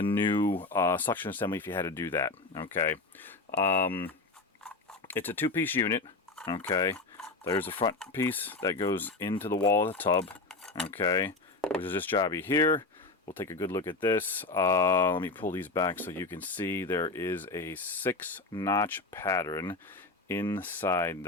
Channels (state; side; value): quieter; right; 3.5 dB